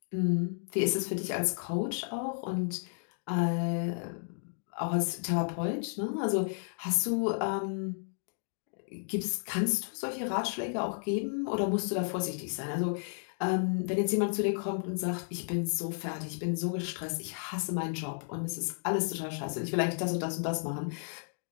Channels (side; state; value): right; silent; digital silence